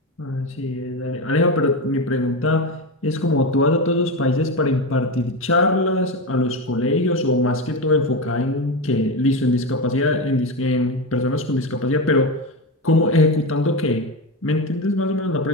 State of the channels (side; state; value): both; normal; correlation 0.17